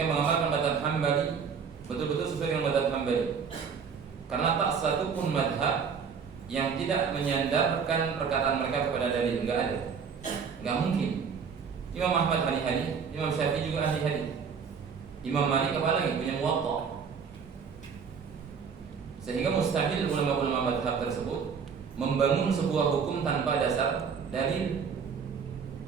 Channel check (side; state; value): left; quieter; 6.3 dB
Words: mengamalkan madhab Hambali, betul-betul sesuai dengan madhab Hambali. Karena tak satu pun madhab yang tidak menyandarkan perkataan mereka kepada dalil, enggak ada, enggak mungkin. Imam Ahmad ahli hadis, Imam Syafi'i juga ahli hadis, Imam Malik apalagi punya muwatta. Sehingga mustahil ulama-ulama madhab tersebut membangun sebuah hukum tanpa dasar dalil.